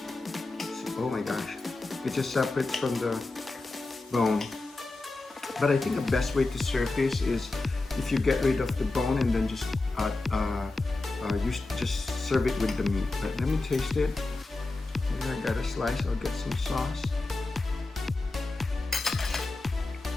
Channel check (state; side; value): quieter; right; 3.2 dB